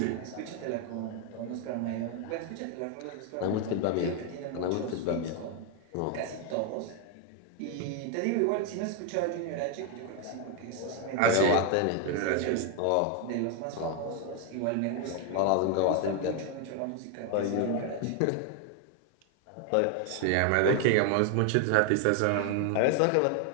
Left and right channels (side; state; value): both; different; correlation 0.01